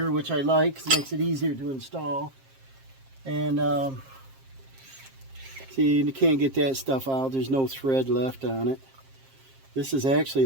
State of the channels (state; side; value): late; left; 7.5 ms